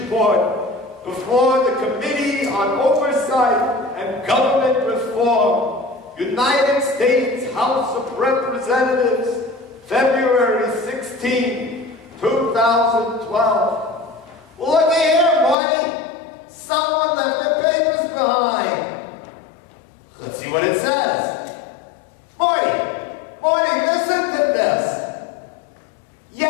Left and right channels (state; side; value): drops out; right; at 15.6 s